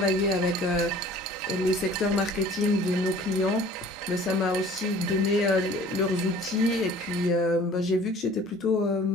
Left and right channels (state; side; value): normal; both; correlation 0.49